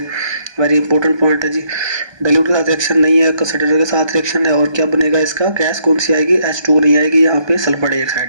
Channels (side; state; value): left; late; 1.3 ms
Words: वेरी इंपॉर्टेंट पॉइंट है जी। डाइल्यूट के साथ रिएक्शन नहीं है, कंसंट्रेटेड के साथ रिएक्शन है। और क्या बनेगा इसका, गैस कौन सी आएगी, H2 नहीं आएगी, यहाँ पे सल्फर